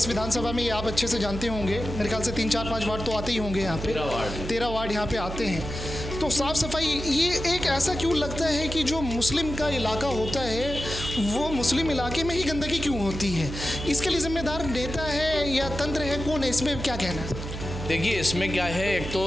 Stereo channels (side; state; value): right; noise; hum, 7 dB below the sound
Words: विधानसभा में, ये आप अच्छे से जानते होंगे, मेरे ख्याल से 3, 4, 5 वार्ड तो आते ही होंगे यहाँ पे, 13 वार्ड यहाँ पे आते हैं। तो साफ़ सफाई ये एक ऐसा क्यों लगता है कि जो मुस्लिम का इलाका होता है वो मुस्लिम इलाके में ही गंदगी क्यों होती है? इसके लिए जिम्मेदार नेता है या तंत्र है, कौन है? इसमें क्या कहना है? देखिए इसमें क्या है, एक